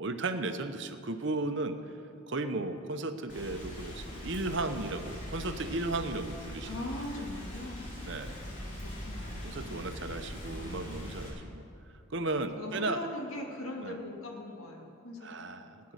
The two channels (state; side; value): normal; both; correlation 0.22